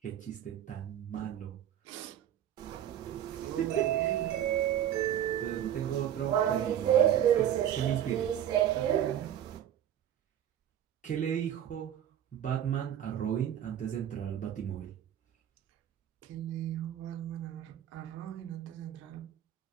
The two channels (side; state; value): left; quieter; 10.6 dB